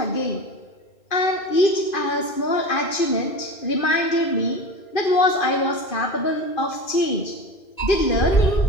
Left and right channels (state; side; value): late; right; 2.5 ms